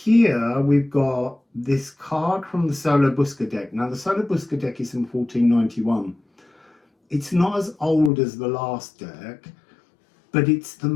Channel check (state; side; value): drops out; right; at 8.1 s